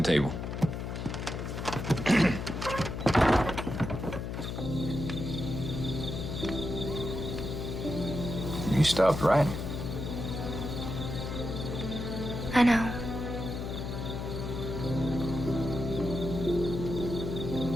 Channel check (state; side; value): noise; left; hum, 5 dB below the sound